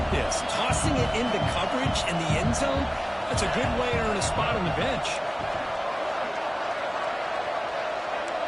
this. Tossing it into coverage in the end zone, that's a good way to earn a spot on the bench.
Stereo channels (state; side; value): identical; both; correlation 1.00